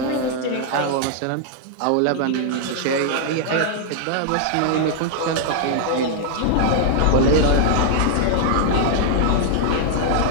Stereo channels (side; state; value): both; different; correlation -0.01